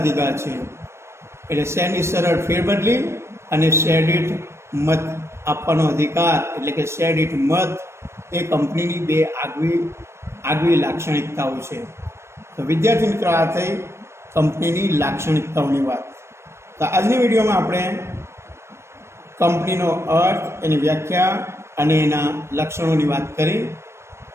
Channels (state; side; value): late; left; 0.13 ms